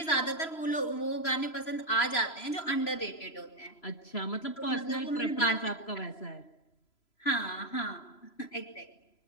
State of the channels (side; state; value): right; late; 3.0 ms